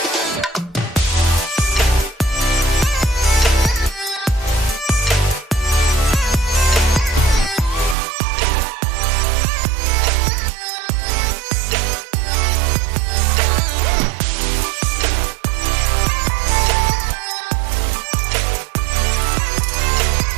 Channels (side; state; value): left; drops out; at 8.0 s